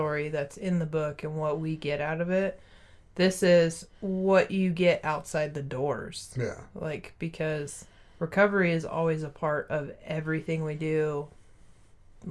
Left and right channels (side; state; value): both; identical; correlation 1.00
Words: that's in the book and what we get out of it. This is what you get outside the doors. Yeah. Like, because recovery is always a part of everything we do.